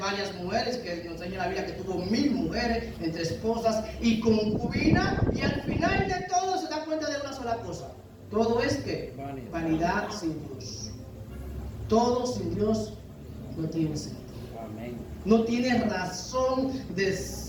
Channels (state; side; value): identical; both; correlation 1.00